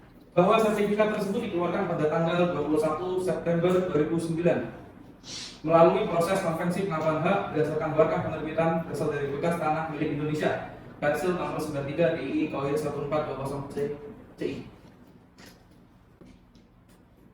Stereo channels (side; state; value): both; identical; correlation 1.00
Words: bahwa sertifikat tersebut dikeluarkan pada tanggal 21 September 2009 melalui proses konvensi pengakuan hak berdasarkan berkah penerbitan dasar dari bekas tanah milik Indonesia Persil nomor 93 DII KOIR 1420 CI.